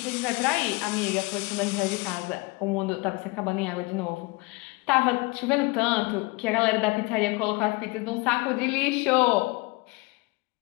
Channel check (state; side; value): quieter; right; 25.7 dB